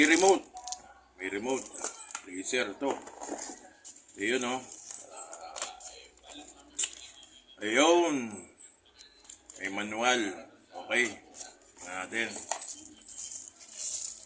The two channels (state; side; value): identical; both; correlation 1.00